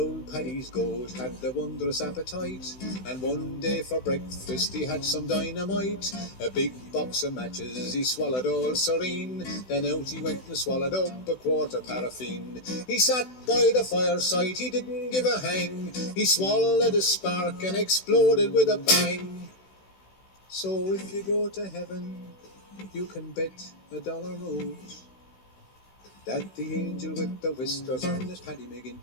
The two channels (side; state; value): right; late; 16 ms